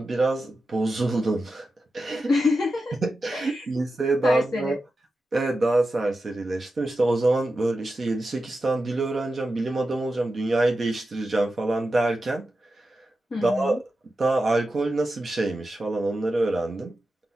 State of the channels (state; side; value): normal; both; correlation 0.91